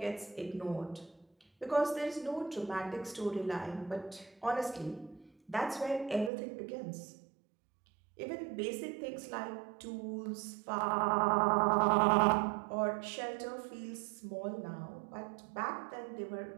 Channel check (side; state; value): left; drops out; at 6.3 s